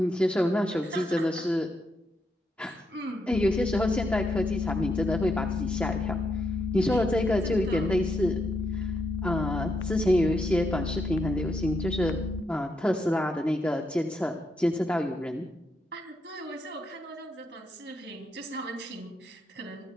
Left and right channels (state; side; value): normal; both; correlation 0.80